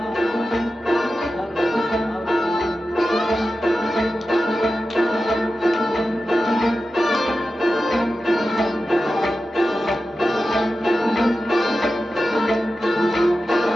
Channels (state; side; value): normal; both; correlation 0.92